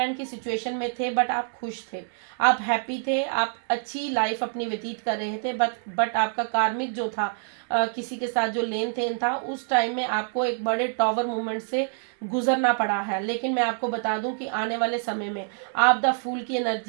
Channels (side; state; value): left; silent; 61 dB below the other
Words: की सिचुएशन में थे, बट आप खुश थे, आप हैप्पी थे, आप अच्छी लाइफ अपनी व्यतीत कर रहे थे। बट आपका कार्मिक जो था, किसी के साथ जो लेन देन था, उस टाइम में आपको एक बड़े टॉवर मूवमेंट से गुजरना पड़ा है। लेकिन मैं आपको बता दूं कि आने वाले समय में आप द फूल की